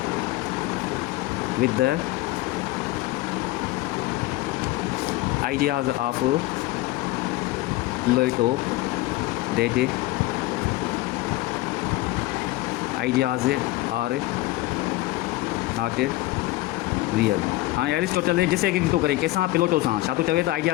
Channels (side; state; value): right; quieter; 18.2 dB